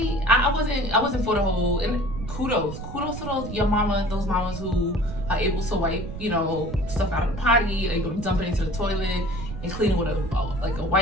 wasn't for the whole, and kudos to those mamas who are able to wipe, stuff out of the potty, able to dump it into the toilet and clean it with a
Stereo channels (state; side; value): noise; right; rumble, 9 dB below the sound